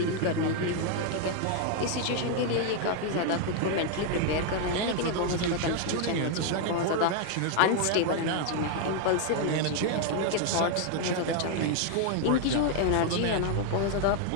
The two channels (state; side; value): different; both; correlation 0.00